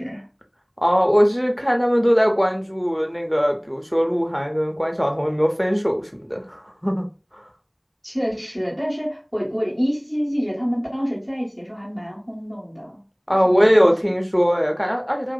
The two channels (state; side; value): identical; both; correlation 1.00